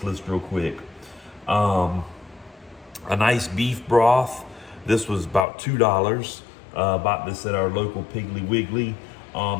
list real quick. A nice beef broth. This was about $2. Bought this at our local Piggly Wiggly.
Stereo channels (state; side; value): drops out; right; at 5.5 s